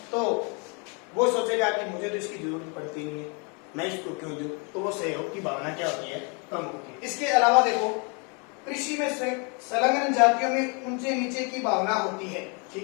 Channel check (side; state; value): right; quieter; 34.4 dB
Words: तो वो सोचेगा कि मुझे तो इसकी जरूरत पड़ती नहीं है, मैं इसको क्यों दूं, तो वो सहयोग की भावना क्या होती है, कम होती है। इसके अलावा देखो, कृषि में संलग्न जातियों में ऊंचे नीचे की भावना होती है।